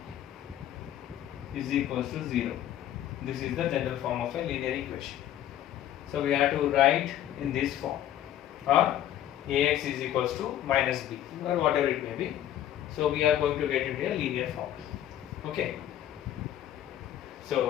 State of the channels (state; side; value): quieter; right; 11.9 dB